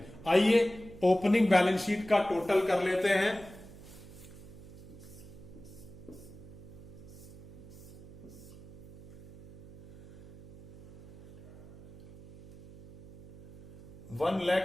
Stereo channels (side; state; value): right; noise; hum, 16 dB below the sound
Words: आइए ओपनिंग बैलेंस शीट का टोटल कर लेते हैं।